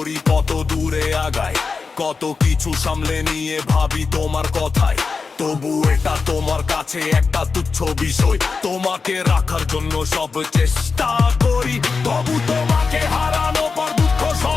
কত দূরে আগাই, কত কিছু সামলে নিয়ে ভাবি তোমার কথাই, তবু এটা তোমার কাছে একটা তুচ্ছ বিষয়। তোমাকে রাখার জন্য সব চেষ্টা করি, তবু তোমাকে হারানো পর দুঃখ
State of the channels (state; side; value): quieter; right; 4.7 dB